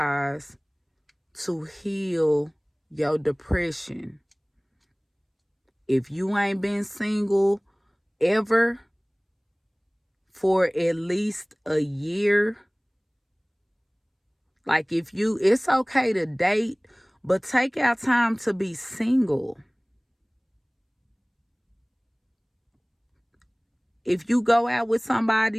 to heal your depression. If you ain't been single ever for at least a year, like it's okay to date, but take out time to be single. If you go out with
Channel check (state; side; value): identical; both; correlation 1.00